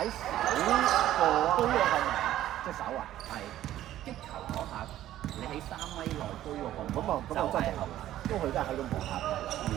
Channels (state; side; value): quieter; left; 13.1 dB